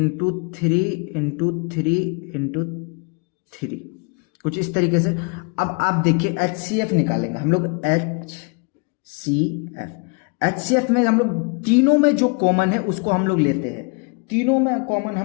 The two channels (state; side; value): quieter; right; 32.8 dB